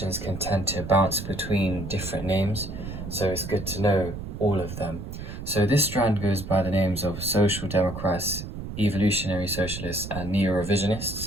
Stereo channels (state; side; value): noise; right; rumble, 8 dB below the sound